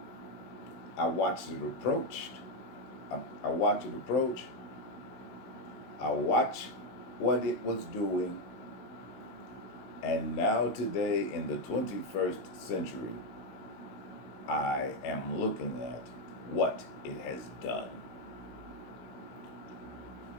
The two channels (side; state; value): right; late; 16 ms